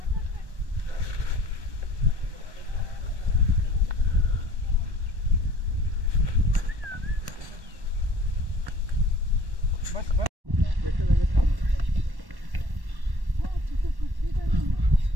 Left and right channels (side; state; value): left; late; 1.1 ms